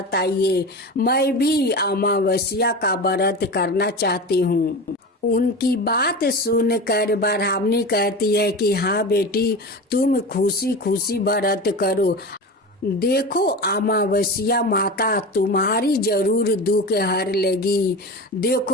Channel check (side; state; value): both; normal; correlation 0.28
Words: मैं भी अमावस्या का व्रत करना चाहती हूँ। उनकी बात सुनकर ब्राह्मणी कहती है कि हाँ बेटी, तुम खुशी खुशी व्रत करो। देखो अमावस्या माता तुम्हारी जरूर दुख हर लेगी।